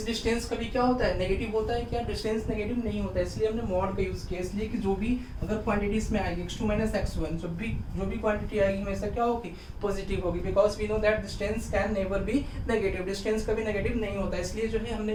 डिस्टेंस कभी क्या होता है, नेगेटिव होता है क्या, डिस्टेंस नेगेटिव नहीं होता है, इसलिए हमने मॉड का यूज किया. इसलिए कि जो भी अगर क्वांटिटीज में आएगी x2 माइनस x1, जो भी क्वांटिटी आएगी हमेशा क्या होगी, पॉजिटिव होगी. Because we know that distance can never be negative, distance कभी नेगेटिव नहीं होता है. इसलिए जो है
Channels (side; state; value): both; identical; correlation 1.00